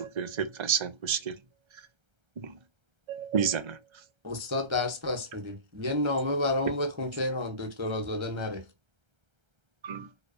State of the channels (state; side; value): late; left; 1.3 ms